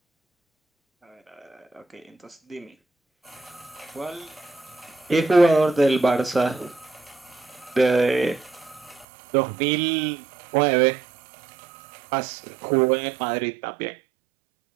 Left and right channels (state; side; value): drops out; left; at 9.1 s